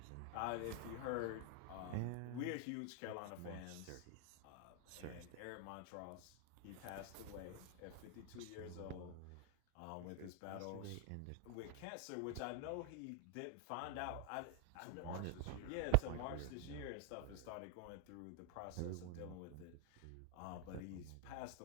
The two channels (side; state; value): both; different; correlation 0.00